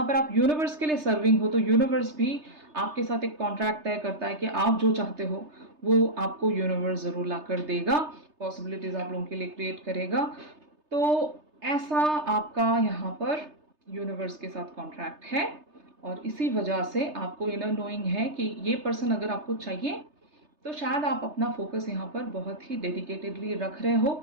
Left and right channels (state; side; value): late; left; 3.3 ms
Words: पर आप यूनिवर्स के लिए सर्विंग हो, तो यूनिवर्स भी आपके साथ एक कॉन्ट्रैक्ट तय करता है कि आप जो चाहते हो वो आपको यूनिवर्स ज़रूर ला कर देगा, पॉसिबिलिटीज़ आप लोगों के लिए क्रिएट करेगा। तो ऐसा आपका यहाँ पर यूनिवर्स के साथ कॉन्ट्रैक्ट है, और इसी वजह से आपको इनर नोइंग है कि ये पर्सन अगर आपको चाहिए, तो शायद आप अपना फोकस यहाँ पर बहुत ही डेडिकेटेडली रख रहे